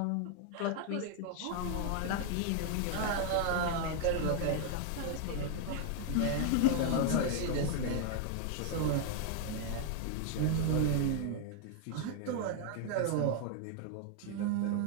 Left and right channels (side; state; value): both; different; correlation 0.00